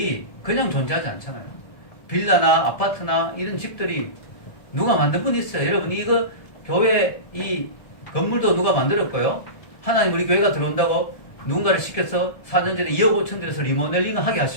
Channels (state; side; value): late; right; 1.7 ms